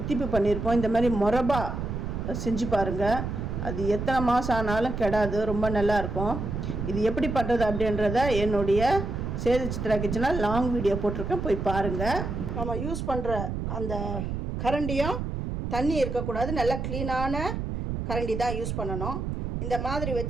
பண்ணியிருப்போம். இந்த மாதிரி மொரபா செஞ்சு பாருங்கள். அது எத்தனை மாதம் ஆனாலும் கெடாது, ரொம்ப நல்லாயிருக்கும். இது எப்படி பண்ணுறது அப்படின்றத என்னுடைய சேது சித்ரா கிச்சனில் லாங் வீடியோ போட்டிருக்கேன், போய் பாருங்கள். நம்ம யூஸ் பண்ணுற அந்த கரண்டியும் தண்ணி இருக்கக்கூடாது, நல்லா க்ளீனான கரண்டி தான் யூஸ் பண்ணணும். இந்த மாதிரி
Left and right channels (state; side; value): noise; right; rumble, 4 dB below the sound